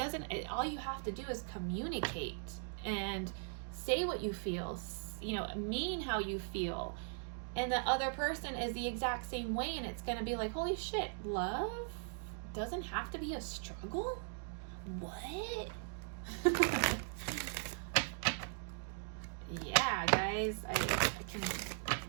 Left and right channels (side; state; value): left; silent; digital silence